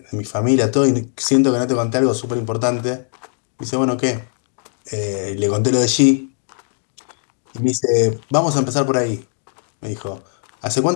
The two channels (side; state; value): right; silent; digital silence